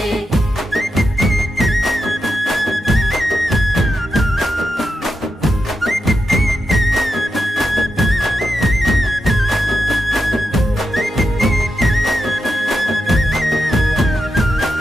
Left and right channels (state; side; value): normal; both; correlation 0.87